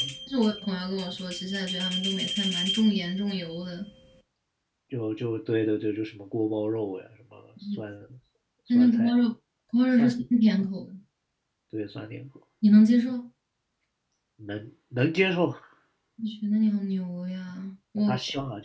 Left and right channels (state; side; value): identical; both; correlation 1.00